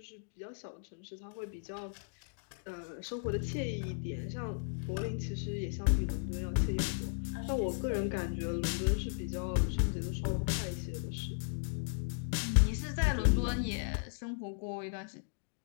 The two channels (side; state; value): right; silent; digital silence